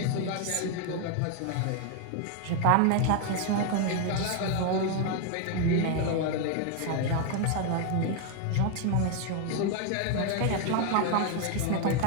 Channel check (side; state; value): both; different; correlation 0.01